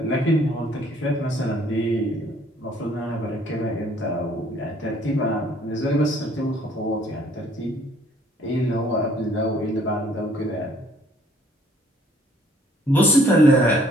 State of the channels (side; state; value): both; normal; correlation 0.60